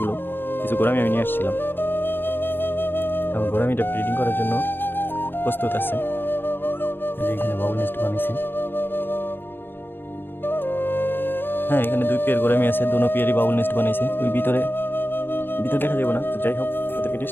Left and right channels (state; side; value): late; right; 0.098 ms